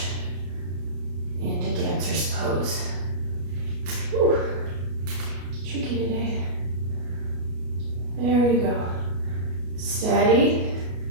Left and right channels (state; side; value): late; left; 33 ms